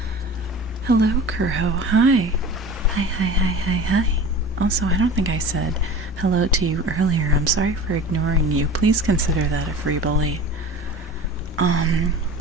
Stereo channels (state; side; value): normal; both; correlation 0.38